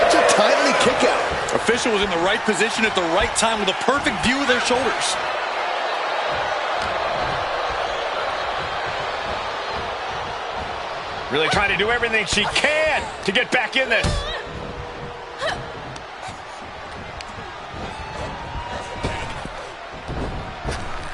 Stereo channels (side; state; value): both; identical; correlation 1.00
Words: a timely kick out. Official was in the right position at the right time with a perfect view of their shoulders. Really trying to do everything she can to get back in this.